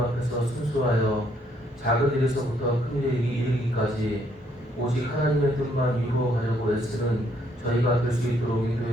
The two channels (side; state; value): both; normal; correlation 0.70